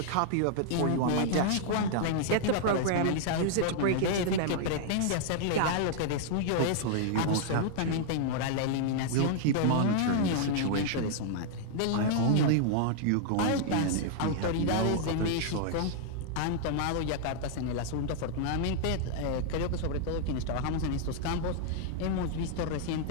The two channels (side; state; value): both; different; correlation -0.01